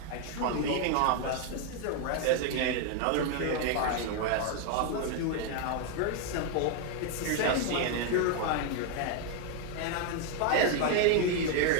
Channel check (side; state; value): both; different; correlation 0.01